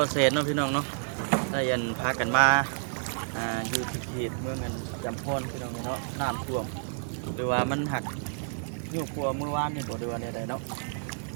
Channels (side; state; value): left; silent; digital silence